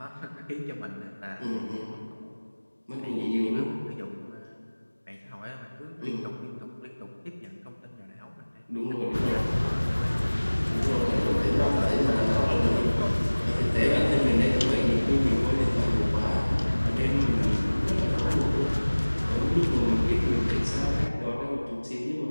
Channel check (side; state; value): both; inverted; correlation -1.00